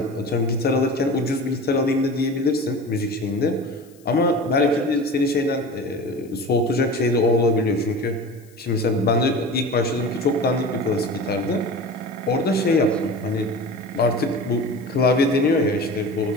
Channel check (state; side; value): noise; left; hiss, 29 dB below the sound